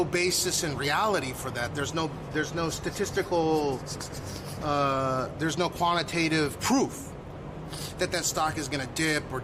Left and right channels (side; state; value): both; identical; correlation 1.00